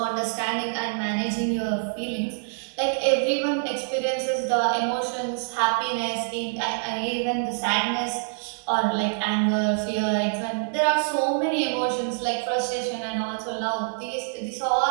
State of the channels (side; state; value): left; silent; digital silence